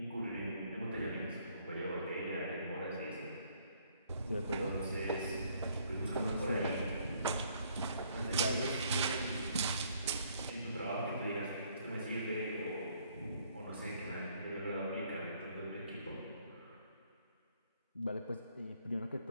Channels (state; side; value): inverted; both; correlation -0.65